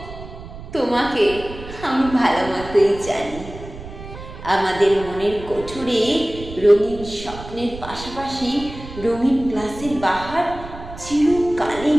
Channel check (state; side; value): noise; right; rumble, 13 dB below the sound